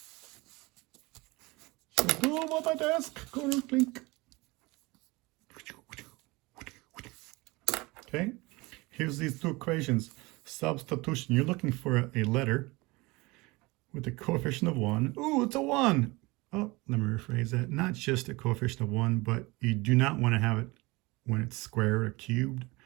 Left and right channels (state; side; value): quieter; left; 23.5 dB